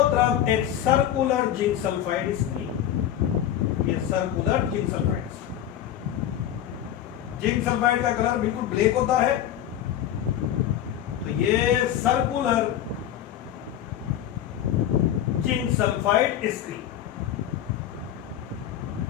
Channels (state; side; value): quieter; right; 11.1 dB